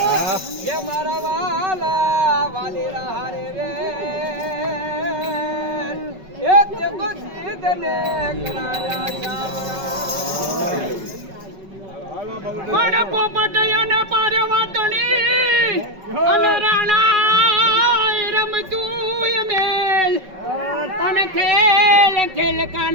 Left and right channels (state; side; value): late; left; 5.3 ms